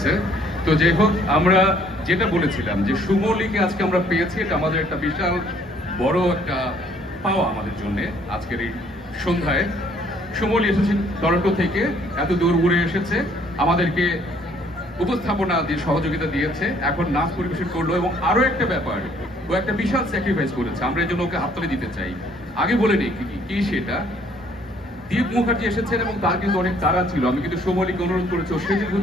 তো যাই হোক, আমরা যেটা বলেছিলাম যে সুমলিকে আজকে আমরা পেয়েছি, এটা আমাদের একটা বিশাল বড় একটা পাওয়া আমাদের জন্য। আজকের এই সন্ধ্যায় সুমলি এসেছেন টরন্টো থেকে, এত দূর উড়ে এসেছে, আমাদেরকে উপস্থাপনা দিয়ে সহযোগিতা দিয়েছে, এখন নাচ পরিবেশন করলো। এবং আরো একটা ব্যাপার, ও একটা বিশাল স্যাক্রিফাইস করেছে, আমরা এই জন্য ওকে হাততালি দিতে চাই। আগে বলে নিই কি সেটা। দীপ মুখার্জি এসেছেন এবং তার কিন্তু অনেক তাড়া ছিল। আমি কিন্তু সুমলিকে অনুরোধ করেছি ও সেজে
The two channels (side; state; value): both; normal; correlation 0.62